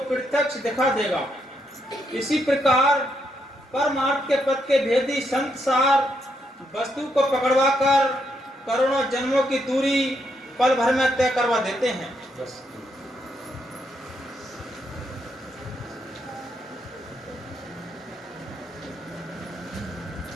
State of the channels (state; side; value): normal; both; correlation 0.78